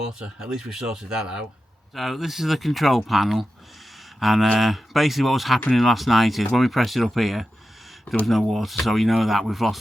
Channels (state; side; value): normal; both; correlation 0.91